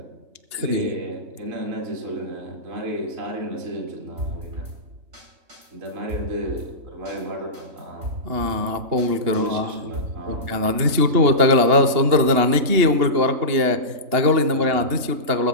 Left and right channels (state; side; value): late; left; 2.9 ms